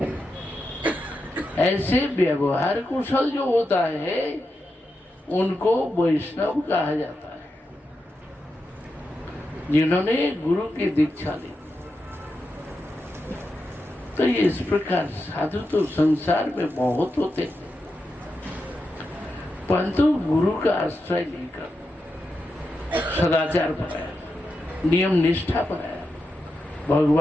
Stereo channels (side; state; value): both; normal; correlation 0.88